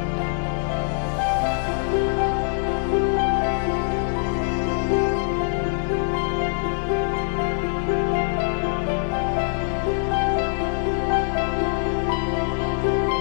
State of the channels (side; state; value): right; silent; digital silence